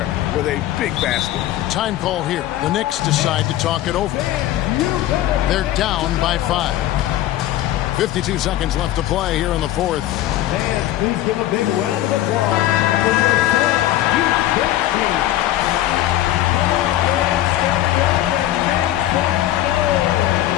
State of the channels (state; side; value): quieter; right; 13.9 dB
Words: with a big basket. Time call here. The Knicks decide to talk it over. They're down by 5. 52 seconds left to play here in the fourth. Fans, please give a big round of applause for your